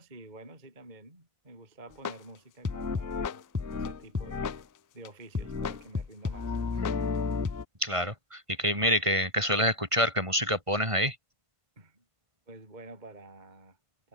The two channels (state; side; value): late; left; 1.5 ms